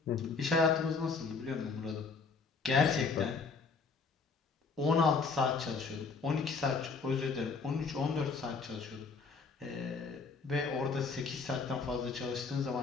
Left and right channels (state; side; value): quieter; right; 4.7 dB